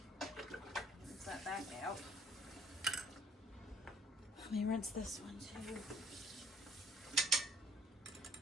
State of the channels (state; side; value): normal; both; correlation 0.59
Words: Rinse that back out. Let me rinse this one too.